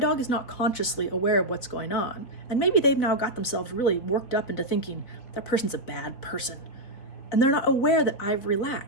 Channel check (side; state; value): right; late; 3.7 ms